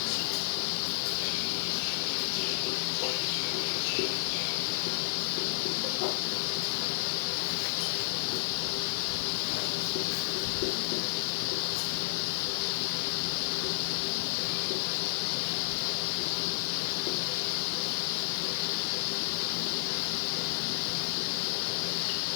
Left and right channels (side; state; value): right; silent; 57 dB below the other